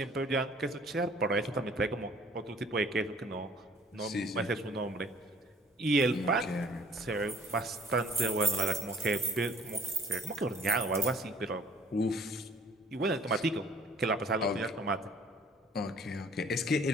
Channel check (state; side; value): normal; both; correlation 0.54